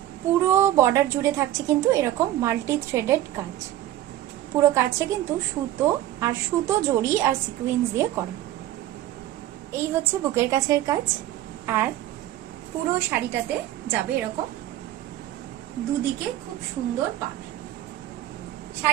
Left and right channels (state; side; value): quieter; left; 13.4 dB